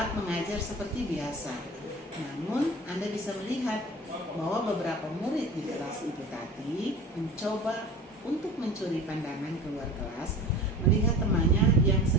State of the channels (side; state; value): both; normal; correlation 0.38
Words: mengajar seperti biasa. Namun Anda bisa melihat bahwa beberapa murid di kelas Ibu Tati mencoba untuk mencuri pandangan keluar kelas melihat temannya yang